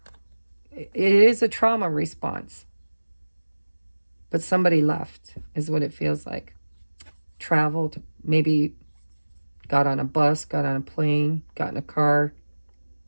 it is a trauma response. But somebody left is what it feels like. Traveled, maybe got on a bus, got on a plane, got in a car.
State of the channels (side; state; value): both; inverted; correlation -1.00